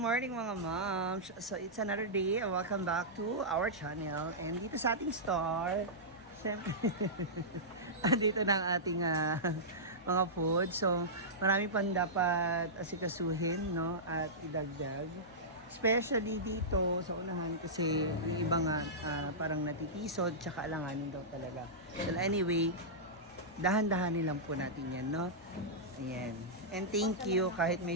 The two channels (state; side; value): normal; both; correlation -0.14